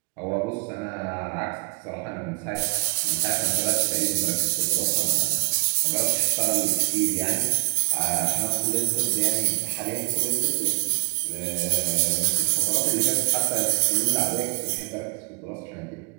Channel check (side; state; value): left; quieter; 29.8 dB